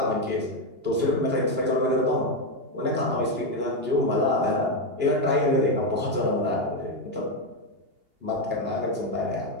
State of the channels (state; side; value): late; left; 2.8 ms